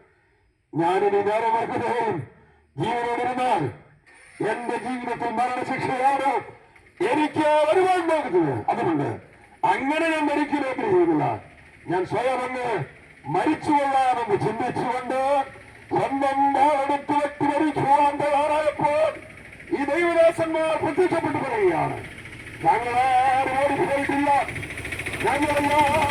ഞാനിനി നേരെ വർക്കുന്നതും ജീവനോടിരുന്നാൽ എന്റെ ജീവിതത്തിൽ മരണശിക്ഷയാണ് എനിക്ക് വരുവാൻ പോകുന്നത്. അതുകൊണ്ട് അങ്ങനെ ഞാൻ മരിക്കുന്ന ആഗ്രഹിക്കുന്നില്ല. ഞാൻ സ്വയം അങ്ങ് മരിച്ചുകൊള്ളാമെന്ന് ചിന്തിച്ചുകൊണ്ട് സ്വന്തം വാളെടുത്ത് വെട്ടി മരിക്കുവാൻ തയ്യാറായപ്പോൾ ഈ ദൈവദാസന്മാർ പ്രത്യക്ഷപ്പെട്ടു പറയുകയാണ്, ഞങ്ങളാരും ഓടിപ്പോയിട്ടില്ല,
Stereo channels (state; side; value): identical; both; correlation 1.00